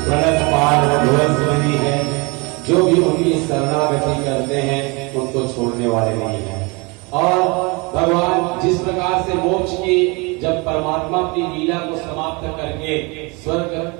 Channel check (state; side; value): quieter; left; 28.1 dB